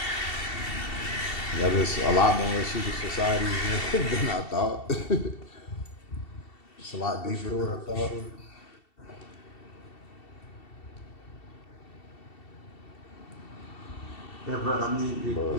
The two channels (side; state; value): right; late; 2.7 ms